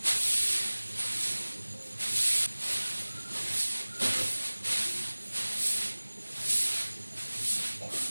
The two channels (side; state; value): both; inverted; correlation -1.00